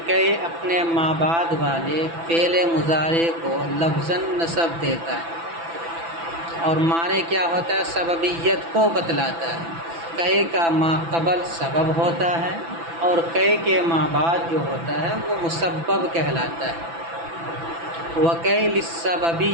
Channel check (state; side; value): late; left; 6.0 ms